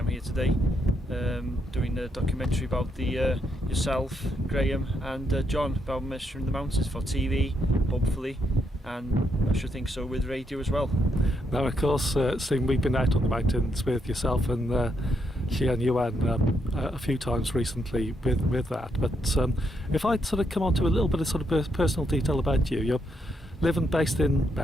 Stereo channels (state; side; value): normal; both; correlation 0.78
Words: here today, doing a documentary about yourself, Graham, and John, about measuring the mountains for TV, hopefully, and I should think so with radio as well. Now, of course, Stephen, we've been out on the mountains with yourself and Yuan a few times recently with that. But if I'd sort of come on to a little bit of sort of personal detail about you, you're living based in